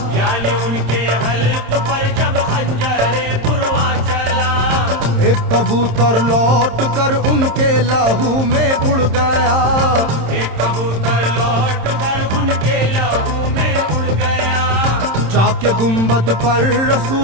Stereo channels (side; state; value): left; late; 26 ms